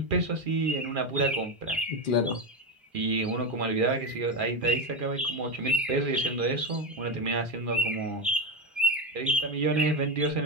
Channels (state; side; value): normal; both; correlation 0.13